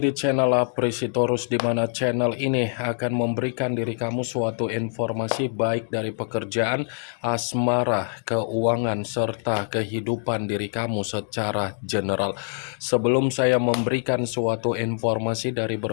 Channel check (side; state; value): right; silent; digital silence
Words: channel Apresitorus, di mana channel ini akan memberikan diri kamu suatu informasi baik dari pekerjaan, asmara, keuangan, serta kehidupan diri kamu secara general. Sebelum saya memberikan suatu informasi dari